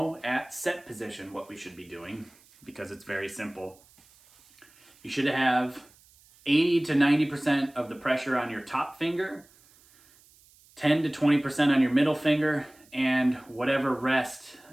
at set position what we should be doing, because it's very simple. You should have 80 to 90% of the pressure on your top finger, 10 to 20% on your middle finger, and whatever rest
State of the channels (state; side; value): noise; right; hiss, 28 dB below the sound